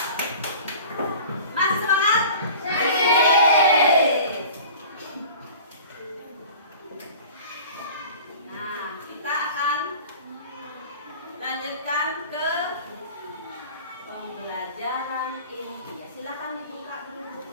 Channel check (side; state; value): both; inverted; correlation -0.42